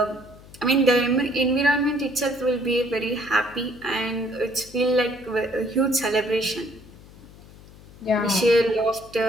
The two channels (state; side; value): noise; left; hum, 21 dB below the sound